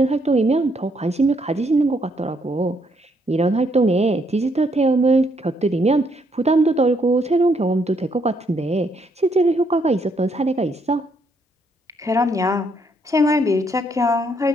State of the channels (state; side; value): normal; both; correlation 0.72